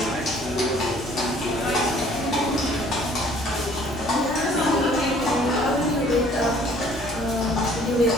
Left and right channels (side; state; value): both; normal; correlation 0.56